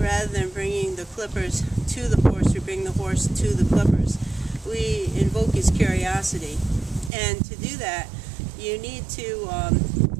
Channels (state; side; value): drops out; left; at 7.1 s